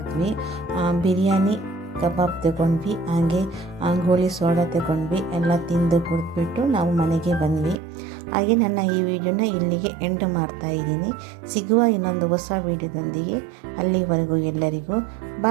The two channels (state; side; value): drops out; left; at 7.8 s